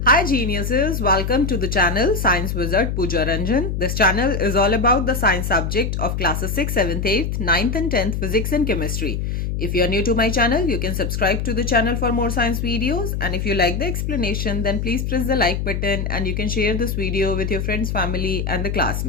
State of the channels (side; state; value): left; noise; hum, 2 dB below the sound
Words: Hi geniuses, welcome to the channel Science Wizard Pooja Ranjan. This channel is all about the science subject of classes 6th, 7th, 8th, 9th and 10th physics and chemistry. If you are new to my channel, you can subscribe to the channel for more science videos, and if you like the explanation, then please press the like button and you can share this video with your friends, family and the